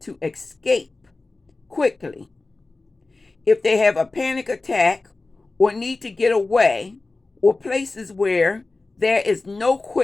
escape quickly. If they have a panic attack or need to get away, or places where there is no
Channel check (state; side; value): quieter; right; 3.4 dB